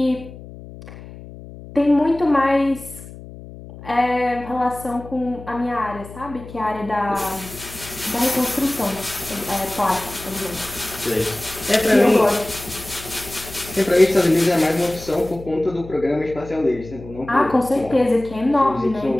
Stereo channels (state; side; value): noise; left; hum, 15 dB below the sound